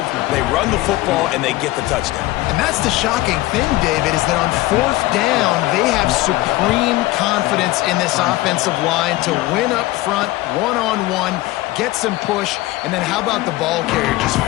They run the football, and they get the touchdown. And that's the shocking thing, David, is that on 4th down, they have supreme confidence in this offensive line to win up front, one-on-one, get some push, and then how about the ball carrier just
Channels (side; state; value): right; quieter; 18.1 dB